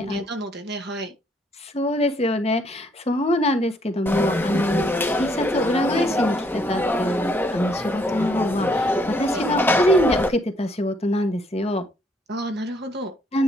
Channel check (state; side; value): normal; both; correlation 0.68